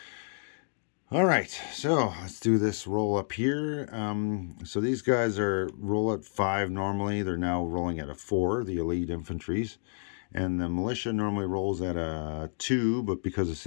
All right, so let's do this roll up here. So these guys are roll at 5 normally. They're now rolling at a 4, the elite infantries. And the militia normally rolls at a 2, but because the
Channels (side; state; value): right; silent; digital silence